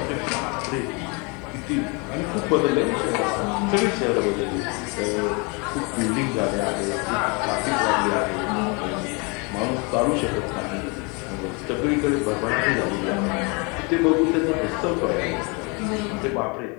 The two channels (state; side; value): quieter; right; 31.1 dB